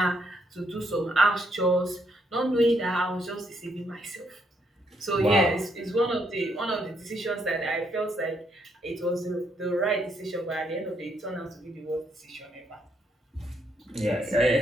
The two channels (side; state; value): both; normal; correlation 0.74